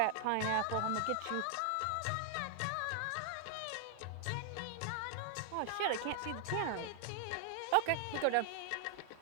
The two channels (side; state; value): both; different; correlation 0.00